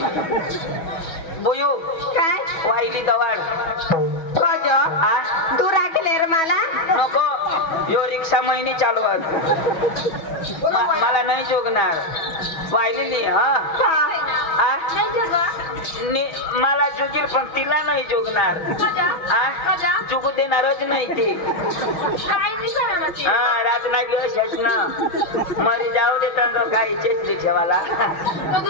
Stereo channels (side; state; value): right; late; 6.2 ms